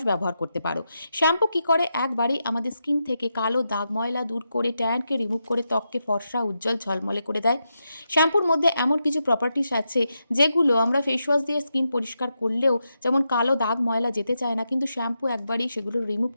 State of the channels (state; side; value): inverted; both; correlation -0.86